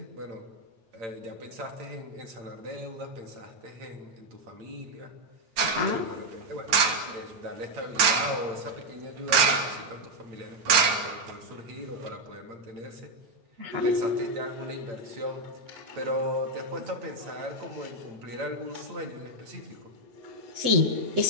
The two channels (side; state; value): left; late; 9.2 ms